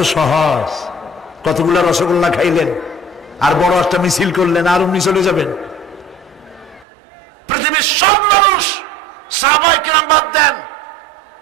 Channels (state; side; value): drops out; left; at 6.9 s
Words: সহজ। কতগুলা রসগোল্লা খাইলেন আর বড় একটা মিছিল করলেন আর অমনি চলে যাবেন? পৃথিবীর সব মানুষ, সাহাবায়ে কেরাম বাদ দেন,